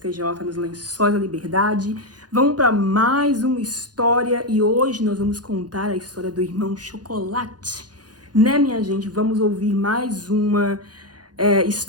nos Lençóis da Liberdade. Vamos para mais uma história e hoje nós vamos contar a história do irmão Chocolate. Né, minha gente? Vamos ouvir mais uma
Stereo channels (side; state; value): left; late; 0.69 ms